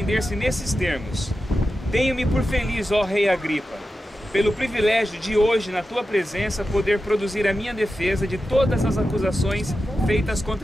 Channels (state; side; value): normal; both; correlation 0.91